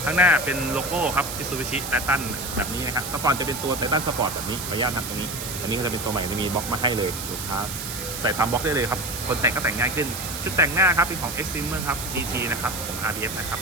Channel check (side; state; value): right; noise; hiss, 7 dB below the sound